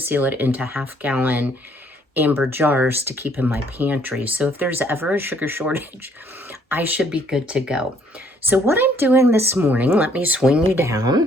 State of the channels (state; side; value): normal; both; correlation 0.64